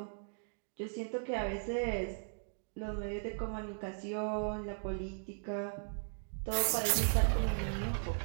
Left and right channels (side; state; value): left; silent; digital silence